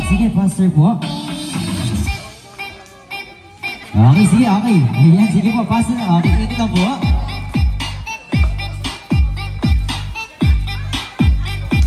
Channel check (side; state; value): both; identical; correlation 1.00